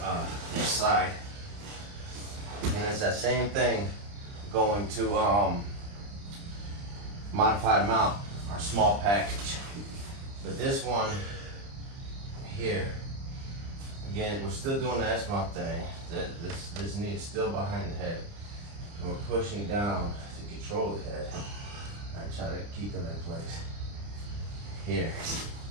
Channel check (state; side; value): late; left; 30 ms